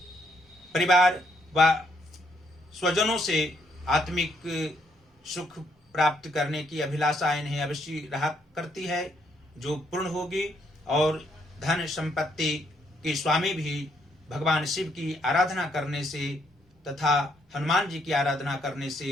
परिवार व स्वजनों से आत्मिक सुख प्राप्त करने की अभिलाषा इन्हें अवश्य रहा करती है जो पूर्ण होगी। और धन संपत्ति के स्वामी भी भगवान शिव की आराधना करने से तथा हनुमान जी की आराधना करने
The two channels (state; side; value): normal; both; correlation 0.72